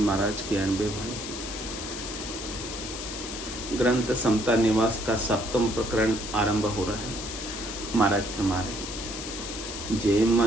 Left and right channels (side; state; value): left; noise; hiss, 8 dB below the sound